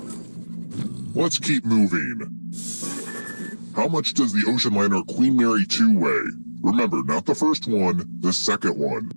Let's keep moving. How much does the ocean liner Queen Mary 2 weigh? Remember, not the first one, the second one.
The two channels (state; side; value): inverted; both; correlation -1.00